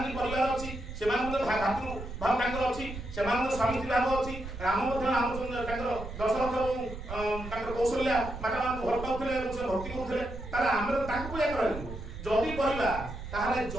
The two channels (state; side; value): noise; right; rumble, 9 dB below the sound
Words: की परिवार अछि सेमान को भातृ भाव तांकर अछि सेमान को स्वामी भाव अछि राम मध्य रामचंद्र तांकर दशरथ तांकर कौशल्या माता मान घर पाउथले से भक्ति करथले तार हमर तांको पूजा करलु जदी परिबा ताहाले